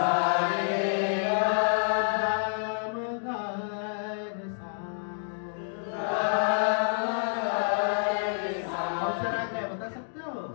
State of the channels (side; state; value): right; silent; digital silence